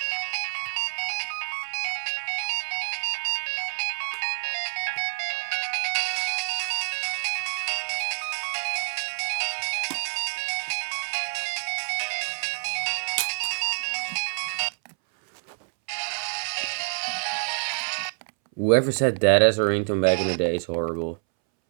Whoever said that as a ringtone back in the day is horrible.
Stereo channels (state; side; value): silent; left; 60 dB below the other